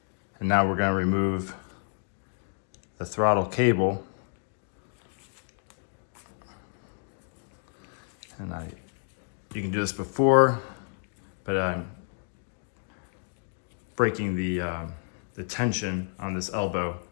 And now we're going to remove the throttle cable. And you can do this before, but I'm breaking the tension on this elbow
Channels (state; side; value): silent; right; 58 dB below the other